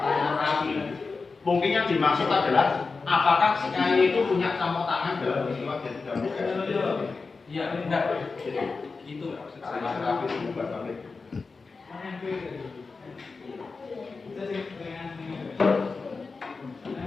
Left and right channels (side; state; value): right; quieter; 4.3 dB